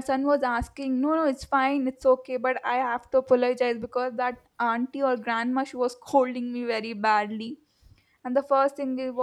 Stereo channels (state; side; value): identical; both; correlation 1.00